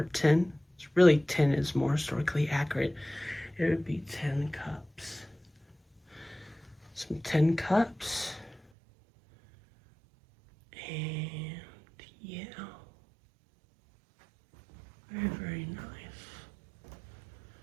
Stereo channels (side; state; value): left; drops out; at 8.6 s